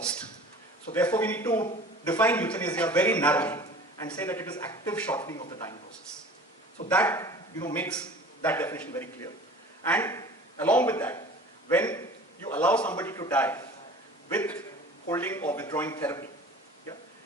So therefore we need to define euthanasia very narrowly and say that it is active shortening of the dying process. So that makes that definition very clear. And along with that, when you allow somebody to die with holding or withdrawing therapy, yeah,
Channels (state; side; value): normal; both; correlation 0.43